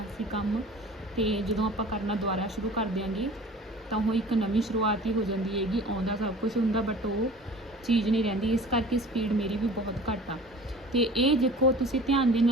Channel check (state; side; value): normal; both; correlation 0.43